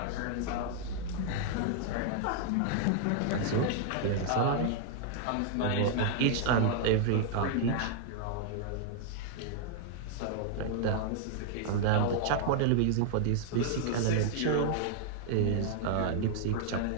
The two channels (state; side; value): different; both; correlation 0.00